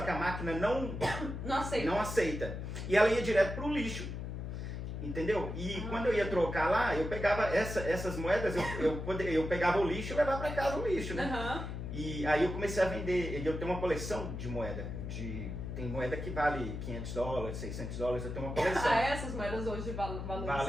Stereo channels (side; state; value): left; noise; hum, 6 dB below the sound